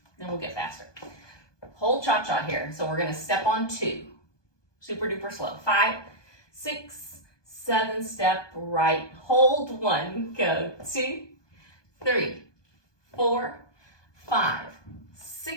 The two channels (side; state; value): right; late; 1.2 ms